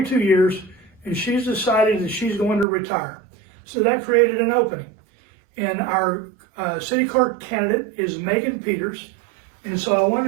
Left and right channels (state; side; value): drops out; left; at 2.7 s